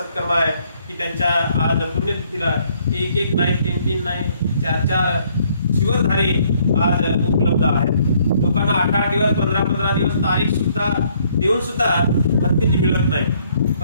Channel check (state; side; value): inverted; both; correlation -0.66